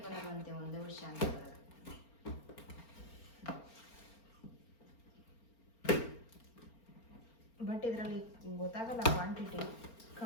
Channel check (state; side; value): late; right; 4.4 ms